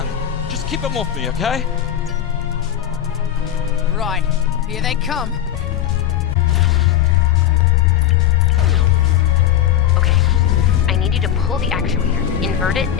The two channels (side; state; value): right; quieter; 10.7 dB